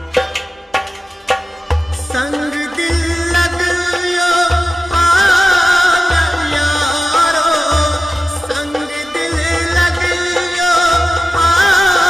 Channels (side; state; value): both; normal; correlation 0.94